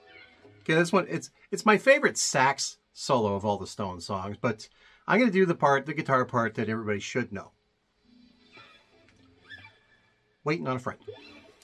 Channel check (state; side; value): identical; both; correlation 1.00